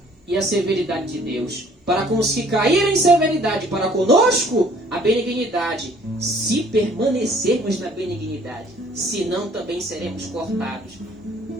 e a severidade de Deus, para com os que caíram em severidade, para conosco a benignidade, se permanecermos na benignidade, senão também seremos cortados.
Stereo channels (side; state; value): both; normal; correlation 0.57